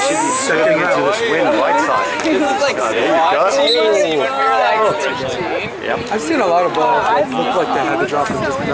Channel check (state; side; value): identical; both; correlation 1.00